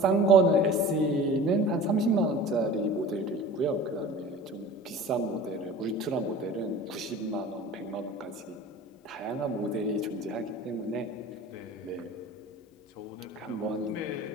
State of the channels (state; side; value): normal; both; correlation 0.40